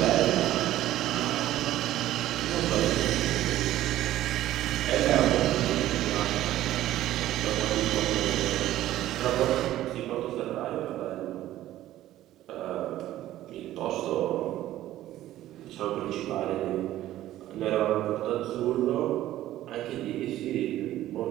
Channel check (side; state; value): left; quieter; 14.0 dB